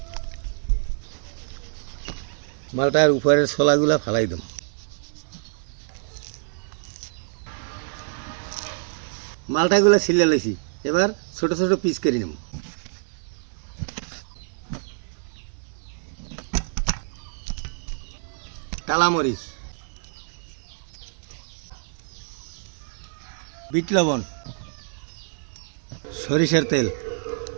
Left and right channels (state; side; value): silent; left; 61 dB below the other